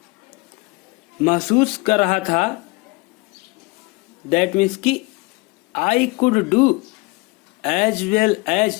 महसूस कर रहा था, दैट मीन्स कि I could do as well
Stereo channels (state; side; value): quieter; right; 24.9 dB